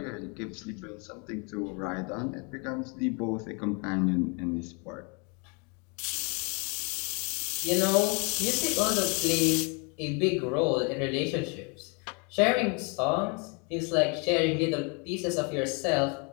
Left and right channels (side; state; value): right; quieter; 33.6 dB